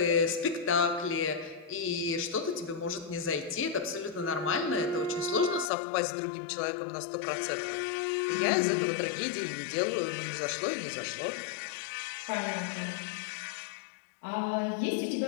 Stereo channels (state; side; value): drops out; right; at 5.7 s